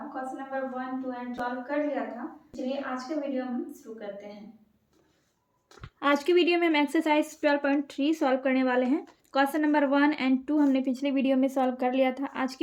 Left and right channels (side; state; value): both; identical; correlation 1.00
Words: क्वेश्चन नंबर 1, 2 एंड 12 कर लिया था। चलिए आज के वीडियो हम शुरू करते हैं। आज के वीडियो में हम एक्सरसाइज 12.3 सॉल्व करने वाले हैं। क्वेश्चन नंबर 1 एंड 2 हमने पिछले वीडियो में सॉल्व कर लिया था। आज